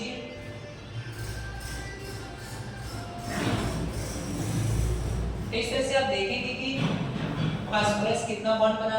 तो इस तरह से आप देखेंगे कि फास्फोरस कितना बॉन्ड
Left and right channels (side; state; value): both; identical; correlation 1.00